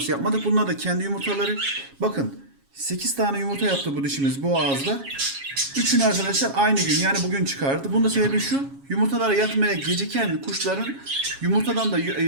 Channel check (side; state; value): left; late; 7.3 ms